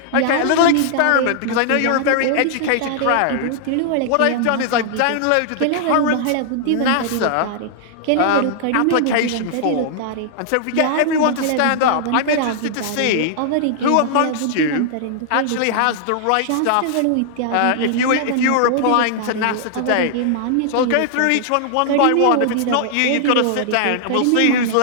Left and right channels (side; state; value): both; different; correlation -0.01